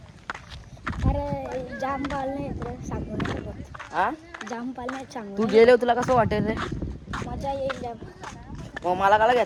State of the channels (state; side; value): identical; both; correlation 1.00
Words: अरे जाम पाळणे आहेत रे, सांगू नाही शकत. हा, जाम पाळणे आहेत, सांगू तू नाही गेले तुला कसं वाटेल रे? शकत. मजा येईल जाम. मग मला काला